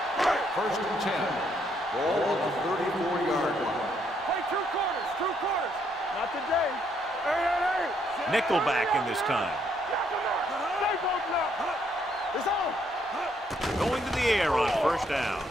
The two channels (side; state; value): both; normal; correlation 0.72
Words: 1st and 10. Ball on the 34-yard line. Two quarters. Not today. Hey. Nickelback in this time. It's on. Going to the air on first down.